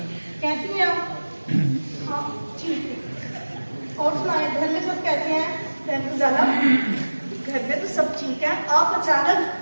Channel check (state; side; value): inverted; both; correlation -1.00